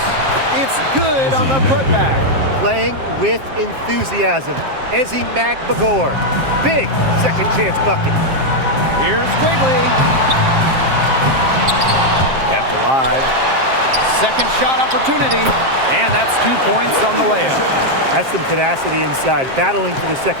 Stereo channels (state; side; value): late; left; 7.5 ms